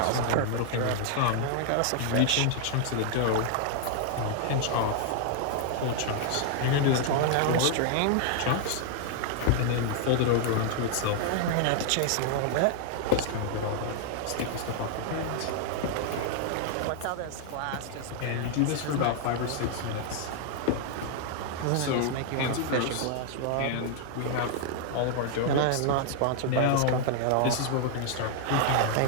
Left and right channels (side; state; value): both; different; correlation 0.00